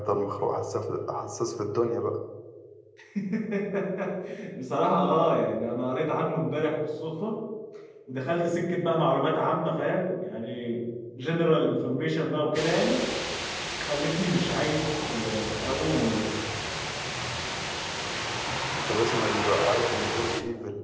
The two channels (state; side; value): identical; both; correlation 1.00